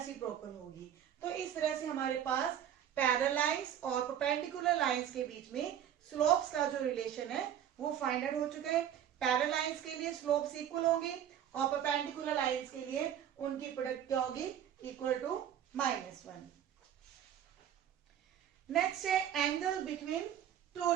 होगी। तो इस तरह से हमारे पास पैरेलल लाइंस और परपेंडिकुलर लाइंस के बीच में स्लोप्स का जो रिलेशन है वो फाइंड आउट हो चुका है। पैरेलल लाइंस के लिए स्लोप्स इक्वल होगी और परपेंडिकुलर लाइंस के लिए उनकी प्रोडक्ट क्या होगी, इक्वल टू -1। नेक्स्ट है एंगल बिटवीन टू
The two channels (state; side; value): quieter; left; 10.0 dB